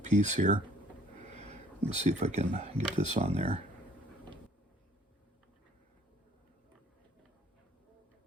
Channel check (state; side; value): normal; both; correlation 0.57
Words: here. Let's see if I can get this on there.